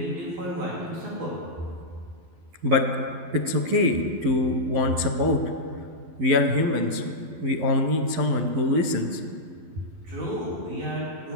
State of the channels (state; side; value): late; left; 12 ms